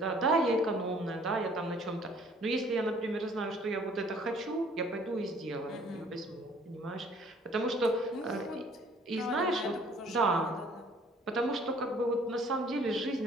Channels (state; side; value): normal; both; correlation 0.57